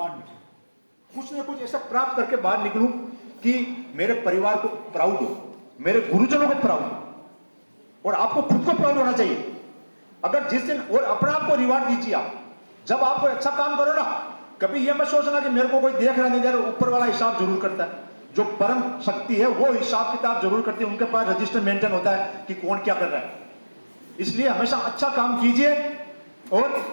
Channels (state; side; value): inverted; both; correlation -1.00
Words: निकलूं, कुछ ना कुछ ऐसा प्राप्त करके बाहर निकलूं कि मेरे परिवार को प्राउड हो, मेरे गुरुजनों को प्राउड हो, और आपको खुद को प्राउड होना चाहिए। अगर जिस दिन और अपने आप को रिवार्ड दीजिए आप, जब आप कोई अच्छा काम करो ना, कभी यह मत सोचना कि मेरे को कोई देख रहा नहीं दे रहा, ऊपर वाला हिसाब जरूर करता है। जो परम शक्ति है वो हिसाब किताब जरूर करती है, उनके पास रजिस्टर मेंटेन होता है कि कौन क्या कर रहा है। इसलिए हमेशा अच्छा काम कीजिए और